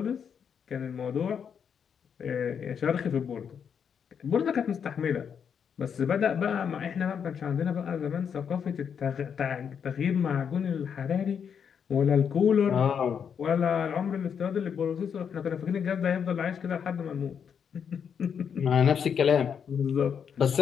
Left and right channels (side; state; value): right; quieter; 7.4 dB